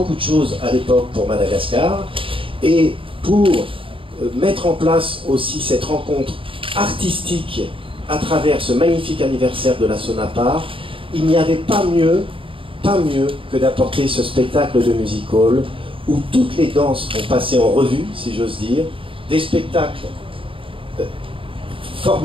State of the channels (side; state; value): left; late; 0.25 ms